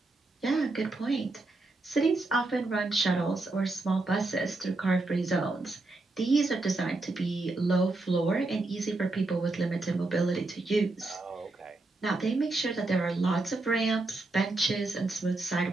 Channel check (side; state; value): left; quieter; 3.2 dB